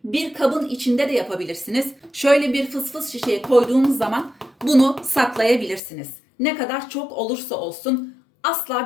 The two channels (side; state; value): right; drops out; at 5.8 s